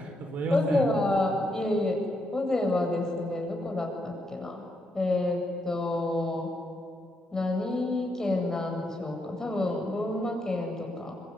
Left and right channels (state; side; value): normal; both; correlation 0.79